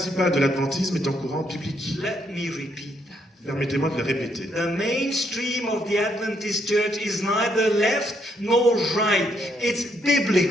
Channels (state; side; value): normal; both; correlation 0.73